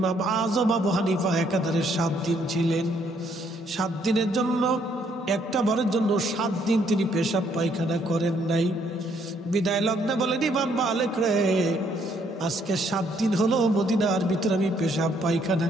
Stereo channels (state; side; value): normal; both; correlation 0.68